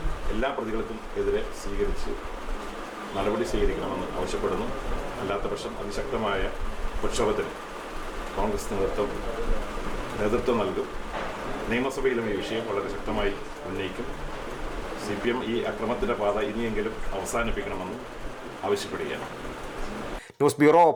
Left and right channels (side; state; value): both; identical; correlation 1.00